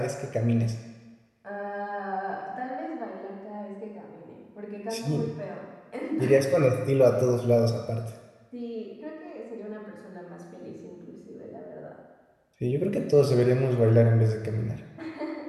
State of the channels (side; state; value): both; identical; correlation 1.00